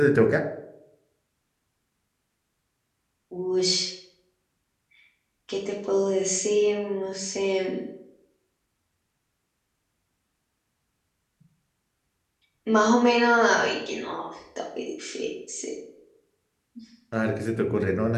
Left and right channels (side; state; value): both; identical; correlation 1.00